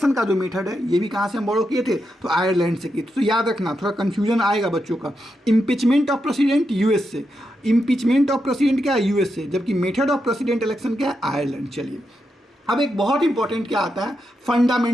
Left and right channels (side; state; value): both; normal; correlation 0.85